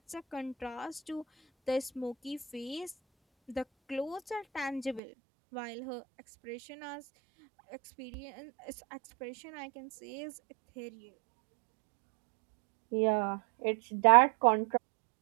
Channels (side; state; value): left; drops out; at 5.0 s